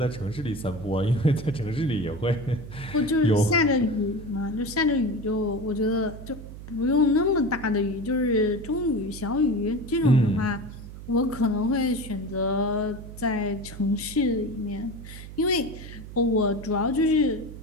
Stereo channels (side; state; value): right; noise; hum, 13 dB below the sound